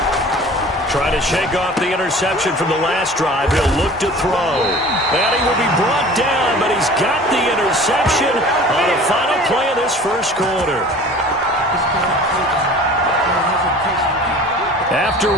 Trying to shake off the interception from the last drive. He'll look to throw. And he will be brought down, but he's got the interception on the final play of this 1st quarter. after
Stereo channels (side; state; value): both; normal; correlation 0.44